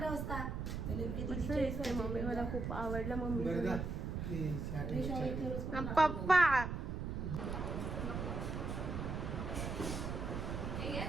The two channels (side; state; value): right; noise; rumble, 3 dB below the sound